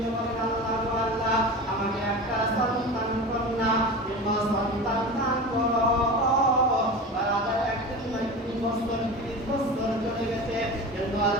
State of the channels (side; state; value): both; normal; correlation 0.30